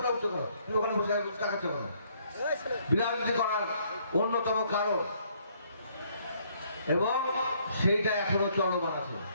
বিরাজনীতি করার অন্যতম কারণ, এবং সেইটা এখনো চলমান আছে।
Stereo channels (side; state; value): both; inverted; correlation -0.66